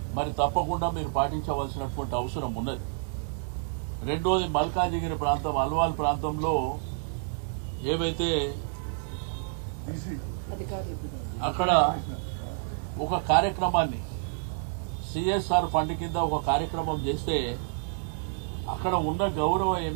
మరి తప్పకుండా మీరు పాటించవలసినటువంటి అవసరం ఉన్నది. రెండోది మల్కాజిగిరి ప్రాంతం, అల్వాల్ ప్రాంతంలో ఏవైతే అక్కడ ఒక కార్యక్రమాన్ని సిఎస్ఆర్ ఫండ్ కింద ఒక కార్యక్రమం చేస్తే అక్కడ ఉన్న గౌరవ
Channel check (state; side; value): silent; left; 59 dB below the other